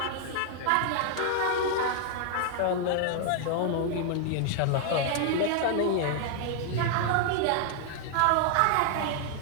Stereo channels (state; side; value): different; both; correlation 0.00